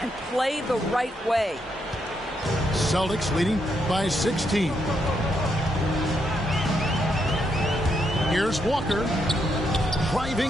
and play the right way. Celtics leading by 16. Here's Walker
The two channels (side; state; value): both; normal; correlation 0.79